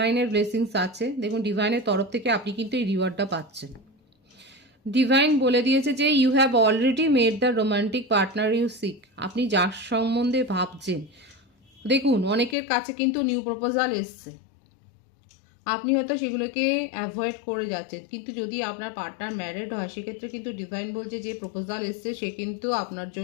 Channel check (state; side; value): drops out; right; at 12.6 s